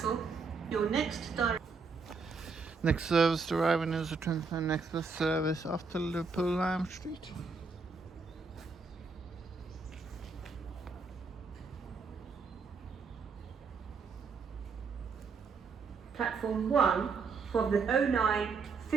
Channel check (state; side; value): quieter; left; 4.8 dB